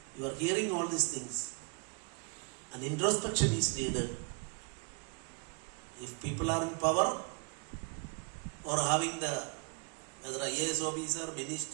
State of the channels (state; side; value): quieter; left; 36.2 dB